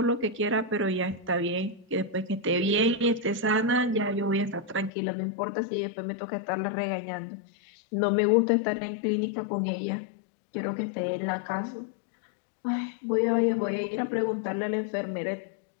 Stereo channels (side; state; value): right; drops out; at 4.9 s